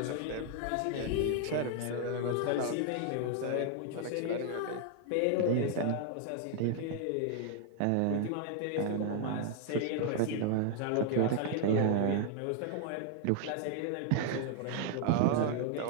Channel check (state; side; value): different; both; correlation 0.00